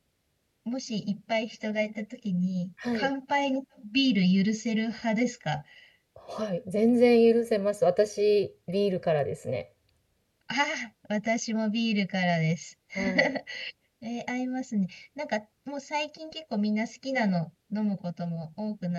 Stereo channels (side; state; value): both; identical; correlation 1.00